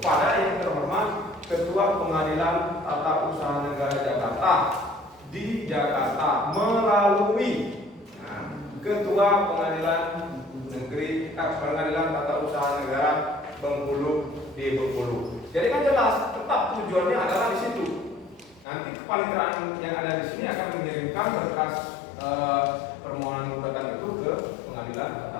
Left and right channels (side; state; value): right; drops out; at 18.7 s